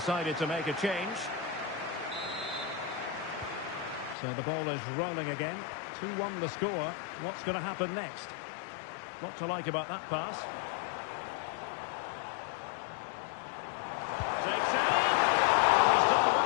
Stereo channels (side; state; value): right; drops out; at 4.2 s